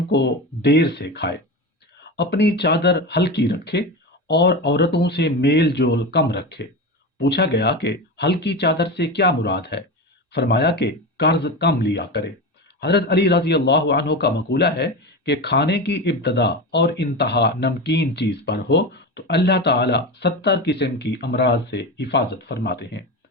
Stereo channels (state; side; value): normal; both; correlation 0.23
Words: کو دیر سے کھائے، اپنی چادر ہلکی رکھے اور عورتوں سے میل جول کم رکھے۔ پوچھا گیا کہ ہلکی چادر سے کیا مراد ہے؟ فرمایا کہ قرض کم لیا کرے۔ حضرت علی رضی اللہ عنہ کا مقولہ ہے کہ کھانے کی ابتدا اور انتہا نمکین چیز پر ہو تو اللہ تعالی 70 قسم کی امراض سے حفاظت فرماتے ہیں۔